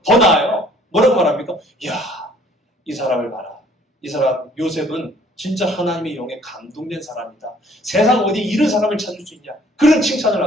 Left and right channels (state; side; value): normal; both; correlation 0.58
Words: 더 나아요. 뭐라고 말합니까? 이야, 이 사람을 봐라. 이 사람 요셉은 진짜 하나님의 영에 감동된 사람이다. 세상 어디 이런 사람을 찾을 수 있냐? 그런 칭찬을